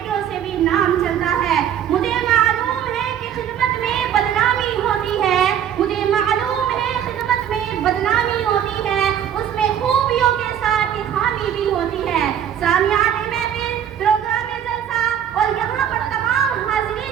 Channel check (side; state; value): left; quieter; 9.5 dB